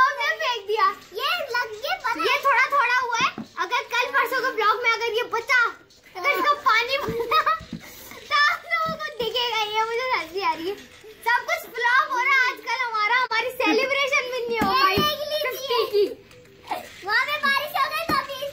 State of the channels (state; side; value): identical; both; correlation 1.00